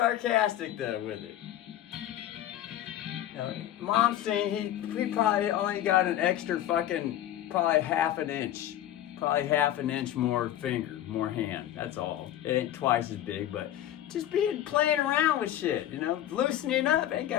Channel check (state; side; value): quieter; right; 12.3 dB